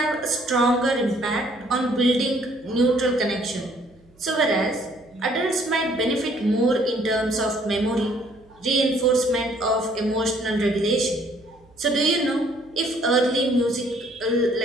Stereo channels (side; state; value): right; noise; hum, 30 dB below the sound